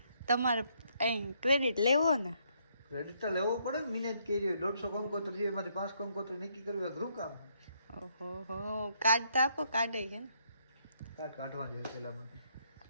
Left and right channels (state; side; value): inverted; both; correlation -0.72